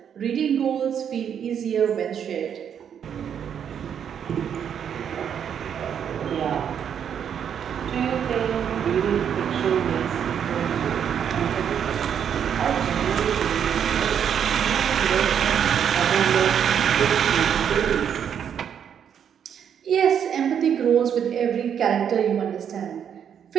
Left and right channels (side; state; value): left; quieter; 8.4 dB